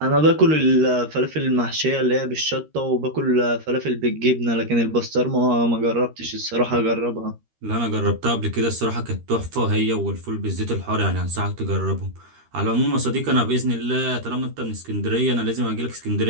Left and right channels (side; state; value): left; late; 13 ms